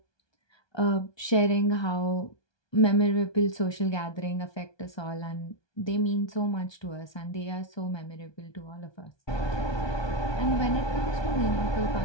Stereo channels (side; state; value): right; late; 1.2 ms